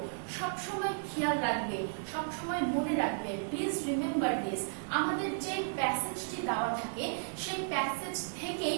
সব সময় খেয়াল রাখবে, সব সময় মনে রাখবে, প্লিজ রিমেম্বার দিস, আমাদের যে প্যাসেজটি দেওয়া থাকে সেই প্যাসেজ থেকেই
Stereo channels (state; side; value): silent; left; digital silence